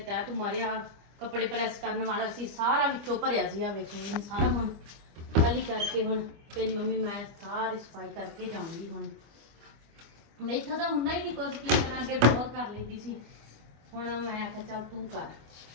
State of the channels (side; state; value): left; late; 25 ms